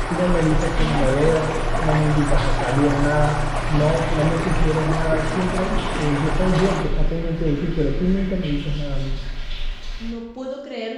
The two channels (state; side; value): identical; both; correlation 1.00